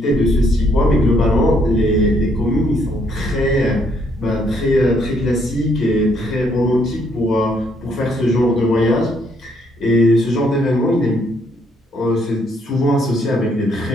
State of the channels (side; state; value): both; normal; correlation 0.70